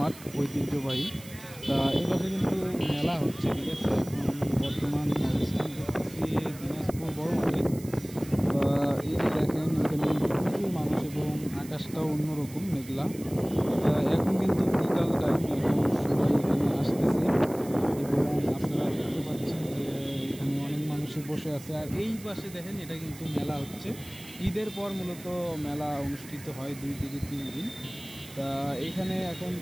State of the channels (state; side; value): noise; right; hiss, 18 dB below the sound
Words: ঐতিহ্যবাহী। তা এই পাশে কিন্তু মেলা হচ্ছে, ঠিক আছে। এখন বর্তমান অবস্থান করতেছি দিনাজপুর বড় মাঠে। এই যে দেখেন, এখানে কিন্তু প্রচুর মানুষ এবং আকাশটাও অন্যরকম মেঘলা। এখন কিন্তু বিকাল টাইম, এখন সবাই এখানে আসতেছে এবং আপনারা দেখতে পাচ্ছেন যে এখানে অনেক মানুষই বসে আছে। আর এই পাশে দেখেন, এটা কিন্তু মেলা হচ্ছে। ঈদের পর মূলত মেলা অনুষ্ঠিত হয় 2 থেকে 3 দিন। তা এখানে এখন